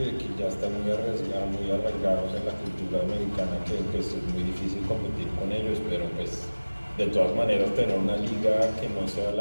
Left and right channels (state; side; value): inverted; both; correlation -1.00